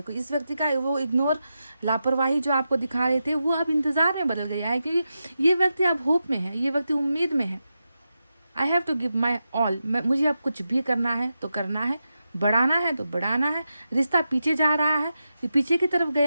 इस व्यक्ति का वो इग्नोर, लापरवाही जो आपको दिखा रहे थे, वो अब इंतज़ार में बदल गया है, क्योंकि ये व्यक्ति अब होप में है, ये व्यक्ति उम्मीद में है। I have to give my all, मुझे अब कुछ भी करना है तो करना है, बढ़ाना है तो बढ़ाना है। रिश्ता पीछे जा रहा है, पीछे की तरफ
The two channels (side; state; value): both; inverted; correlation -0.89